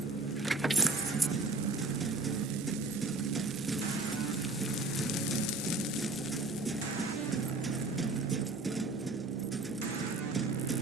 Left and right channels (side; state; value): left; quieter; 3.2 dB